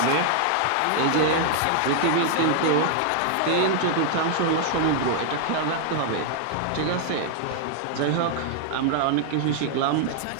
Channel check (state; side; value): different; both; correlation 0.00